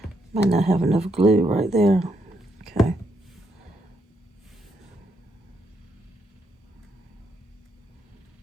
Might not have enough glue right there. Okay.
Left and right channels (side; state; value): both; normal; correlation 0.77